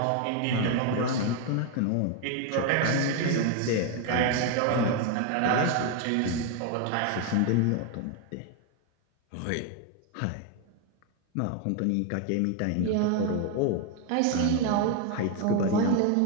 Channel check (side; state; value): both; different; correlation 0.01